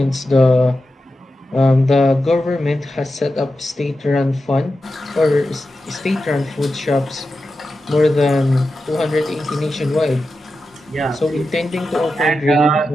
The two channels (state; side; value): normal; both; correlation 0.91